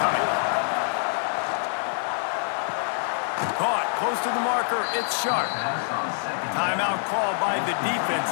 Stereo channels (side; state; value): right; silent; digital silence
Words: coming. Caught close to the marker. It's Sharp. Timeout called by the defense.